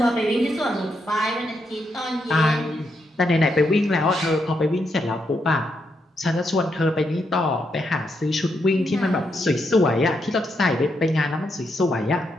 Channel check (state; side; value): normal; both; correlation 0.80